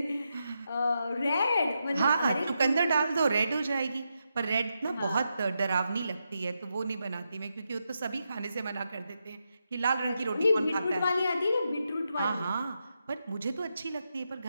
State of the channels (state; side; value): inverted; both; correlation -0.85